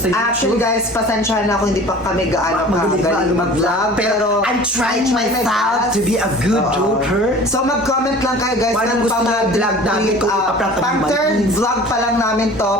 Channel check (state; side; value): normal; both; correlation 0.43